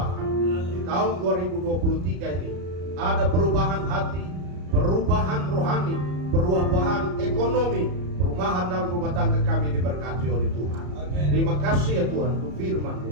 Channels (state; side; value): late; left; 33 ms